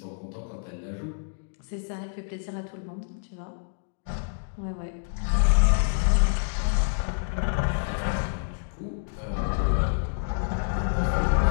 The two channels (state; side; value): silent; right; digital silence